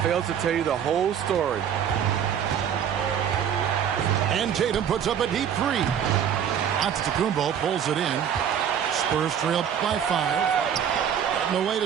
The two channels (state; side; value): quieter; left; 8.7 dB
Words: fails to tell you the whole story. And Tatum puts up a deep three. Antetokounmpo pulls it in. Spurs trail by 5. And the